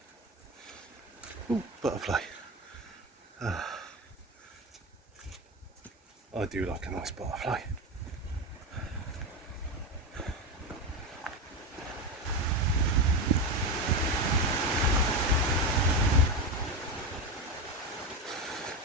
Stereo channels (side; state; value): both; normal; correlation 0.16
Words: Ooh, butterfly. I do like a nice butterfly.